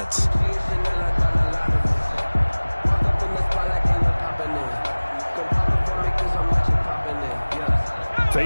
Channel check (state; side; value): inverted; both; correlation -1.00